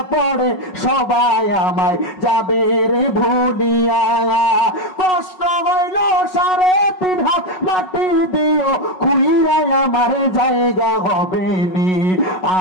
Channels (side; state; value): right; late; 5.4 ms